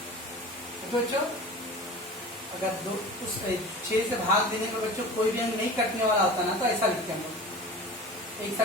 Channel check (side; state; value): both; normal; correlation 0.36